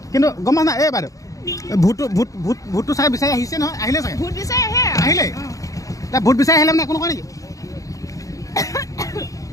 কিন্তু গম পাইছা নাই এই বাইদেউ ভোটটো চাই বিচাৰি আহিছে নহয় আহিলে চাগে ভোট বিচাৰি আহে আহিলে এতিয়া ভোট বিচাৰি আহিলে মানে একো নকয় নেকি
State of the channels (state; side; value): late; right; 0.16 ms